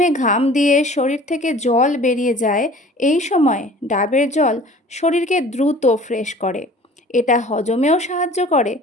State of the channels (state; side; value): normal; both; correlation 0.47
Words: ঘাম দিয়ে শরীর থেকে জল বেরিয়ে যায়, এই সময় ডাবের জল শরীরকে দ্রুত ফ্রেশ করে। এটা হজমেও সাহায্য করে